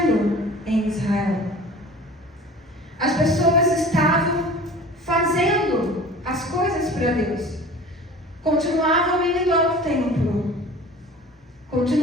em Israel. As pessoas estavam fazendo as coisas para Deus. Continuavam indo ao templo.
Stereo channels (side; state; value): both; normal; correlation 0.42